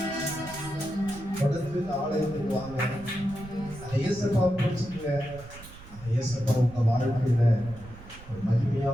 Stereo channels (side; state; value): right; noise; rumble, 17 dB below the sound